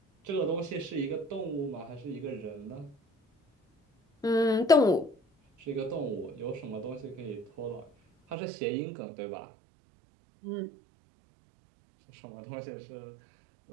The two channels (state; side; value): drops out; left; at 8.3 s